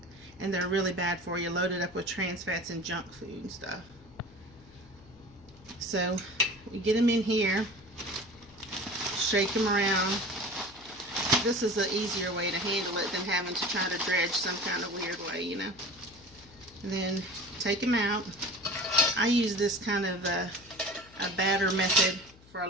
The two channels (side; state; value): left; noise; hum, 24 dB below the sound